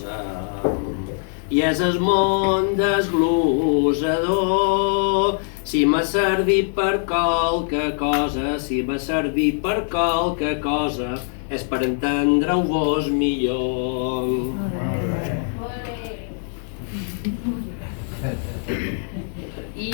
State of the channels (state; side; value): silent; right; 64 dB below the other